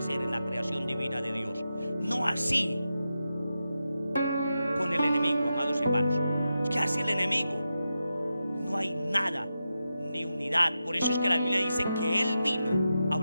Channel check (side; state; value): both; inverted; correlation -0.89